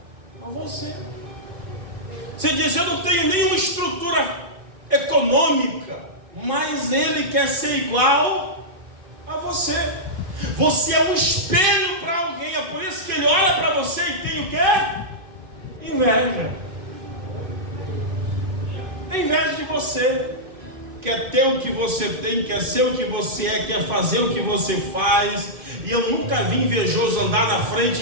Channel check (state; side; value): late; left; 2.5 ms